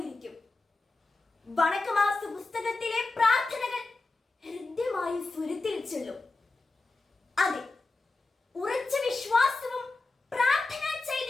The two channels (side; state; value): right; quieter; 3.4 dB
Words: വണക്കമാസ പുസ്തകത്തിലെ പ്രാർത്ഥനകൾ ഹൃദ്യമായി സ്വരത്തിൽ ചൊല്ലും. അതെ, ഉറച്ച വിശ്വാസവും പ്രാർത്ഥനാ